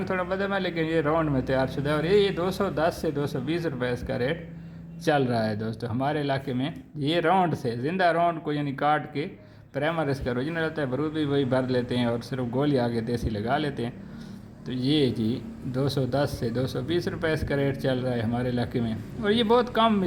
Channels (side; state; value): both; identical; correlation 1.00